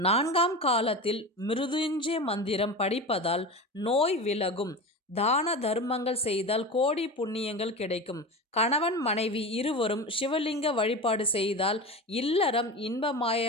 காலத்தில் மிருதுஞ்சய மந்திரம் படிப்பதால் நோய் விலகும். தான தர்மங்கள் செய்தால் கோடி புண்ணியங்கள் கிடைக்கும். கணவன் மனைவி இருவரும் சிவலிங்க வழிபாடு செய்தால் இல்லறம்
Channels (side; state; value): both; normal; correlation 0.27